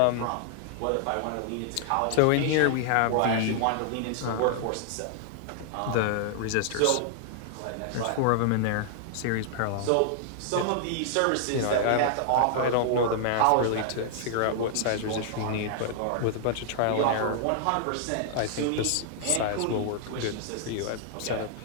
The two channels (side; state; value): both; different; correlation -0.01